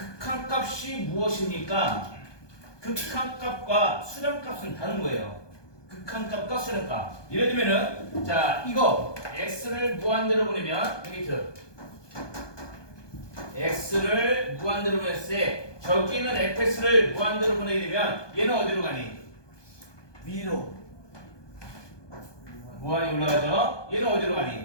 무엇입니까? 극한값과 수렴값은 다른 거예요. 극한값과 수렴값. 예를 들면은 자 이거 x를 무한대로 보내면 여기 x를 무한대로 보냈을 때 저기 있는 fx를 무한대로 보내게 되면 얘는 어디로 가니? 위로 무한이 올라가죠? 얘는 어디로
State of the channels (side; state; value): right; late; 1.2 ms